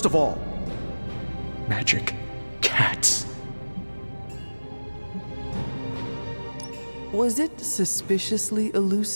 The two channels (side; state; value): both; inverted; correlation -1.00